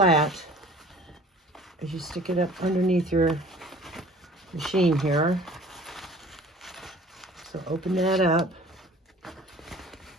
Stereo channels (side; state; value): both; normal; correlation 0.48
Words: as you stick it up underneath your machine here. So open that up,